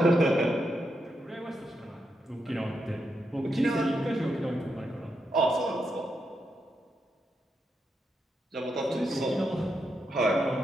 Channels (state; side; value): normal; both; correlation 0.83